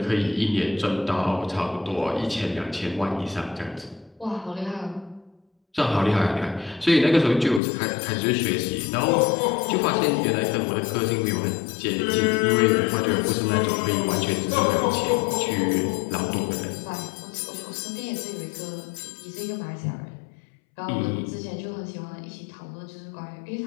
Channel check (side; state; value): right; drops out; at 7.6 s